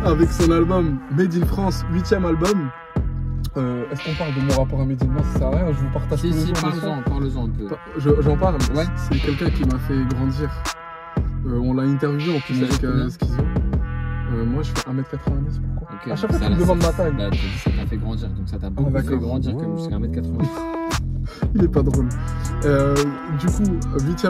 avec son album Made in France, 8e album. Est-ce qu'on parle de mon rapport à Medine? Non, ça sert à rien, je vous partage tous les jours. Parle-en un peu. J'en parle, ouais. C'est quelqu'un qui m'a fait grandir. On l'a interviewé en plus avec Schizo. Moi je fais 1m90, pourquoi? Okay, à chaque fois tu me demandes ma taille. Bah, ça t'a fait grandir, donc ça t'a beaucoup fait grandir comme jusqu'à 1m90. Il est pas drôle. Du coup,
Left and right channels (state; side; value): identical; both; correlation 1.00